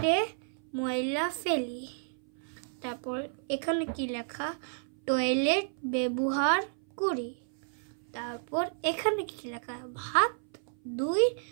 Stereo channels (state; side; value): silent; left; 57 dB below the other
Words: ময়লা ফেলি। তারপর এখানে কি লেখা? টয়লেট ব্যবহার করি। তারপর এখানে কি লেখা? হাত ধুই